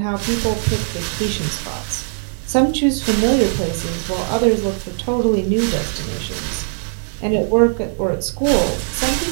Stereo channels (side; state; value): left; silent; digital silence